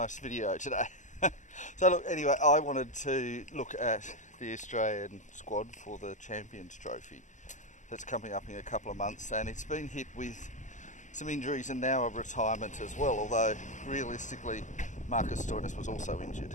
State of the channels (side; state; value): right; late; 0.35 ms